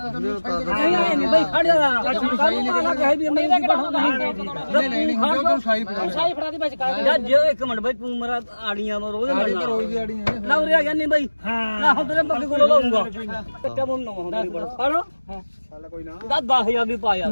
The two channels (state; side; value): inverted; both; correlation -1.00